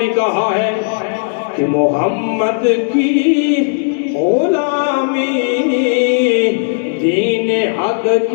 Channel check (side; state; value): right; silent; digital silence